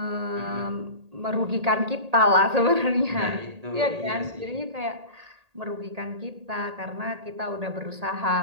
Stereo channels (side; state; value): left; late; 1.8 ms